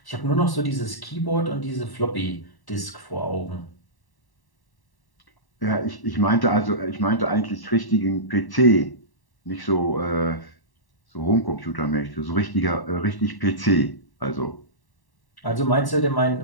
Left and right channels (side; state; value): right; late; 1.1 ms